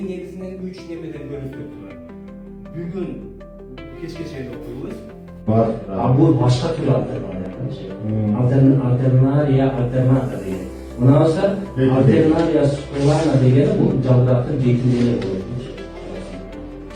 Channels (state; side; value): identical; both; correlation 1.00